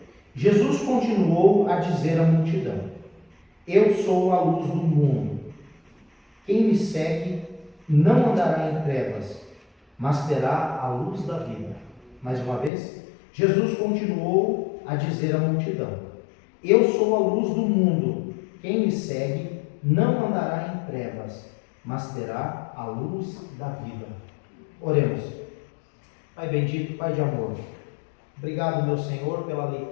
Jesus continuou a dizer à multidão: Eu sou a luz do mundo. Quem me segue não andará em trevas, mas terá a luz da vida. Mais uma vez, Jesus continuou a dizer à multidão: Eu sou a luz do mundo. Quem me segue não andará em trevas, mas terá a luz da vida. Oremos. Pai bendito, Pai de amor, obrigado, meu Senhor, pela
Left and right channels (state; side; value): drops out; right; at 12.7 s